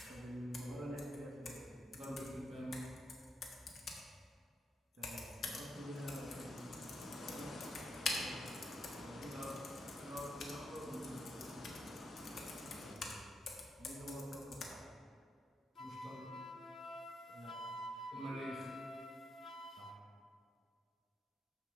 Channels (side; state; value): both; normal; correlation 0.81